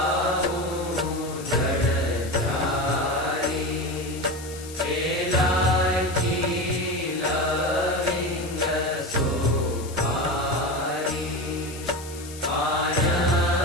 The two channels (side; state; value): left; noise; hiss, 15 dB below the sound